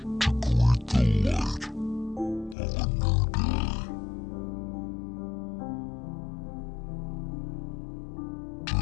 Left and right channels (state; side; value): drops out; right; at 2.6 s